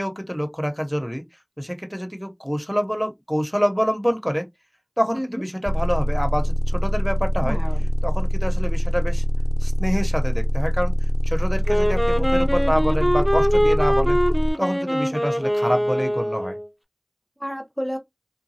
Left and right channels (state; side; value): identical; both; correlation 1.00